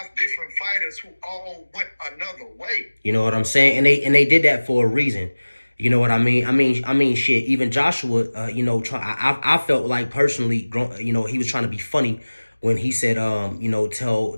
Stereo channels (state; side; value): inverted; both; correlation -1.00